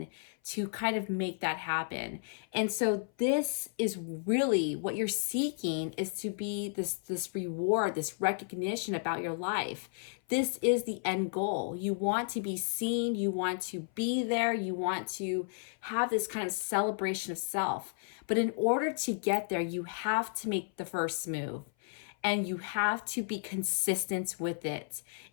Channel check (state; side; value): silent; right; 56 dB below the other